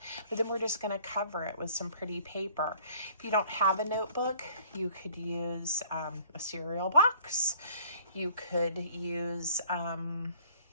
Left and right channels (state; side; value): inverted; both; correlation -0.55